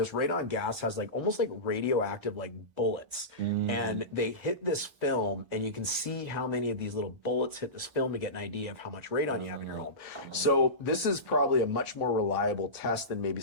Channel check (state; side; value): late; left; 1.2 ms